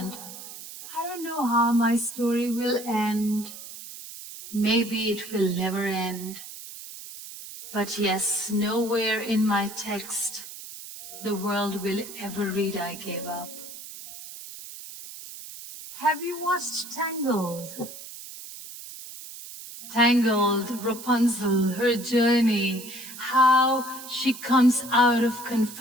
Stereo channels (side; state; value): right; noise; hiss, 13 dB below the sound